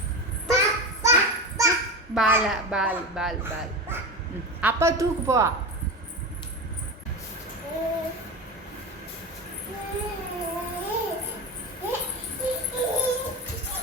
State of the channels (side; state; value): both; normal; correlation 0.23